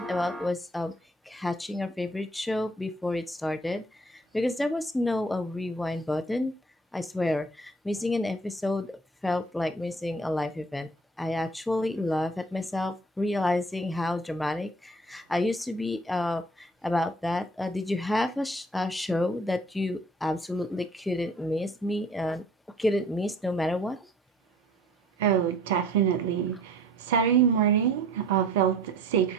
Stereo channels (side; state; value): both; normal; correlation 0.54